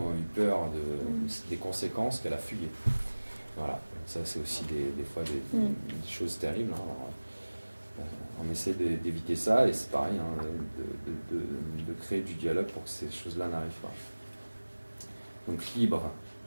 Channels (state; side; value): inverted; both; correlation -1.00